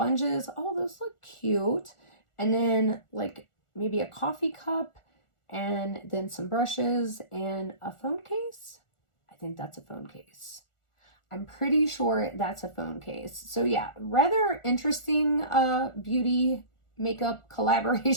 Oh, those look cute. And then like maybe a coffee cup and then some brushes and a phone case. I think that's a phone case. I'm pretty sure that's a phone case. So yeah, rather interesting beauty makeup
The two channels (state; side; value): late; right; 1.4 ms